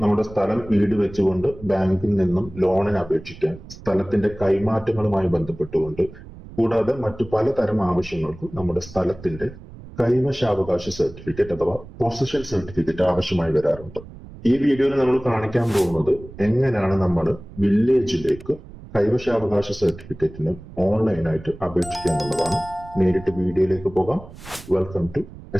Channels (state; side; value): noise; right; rumble, 17 dB below the sound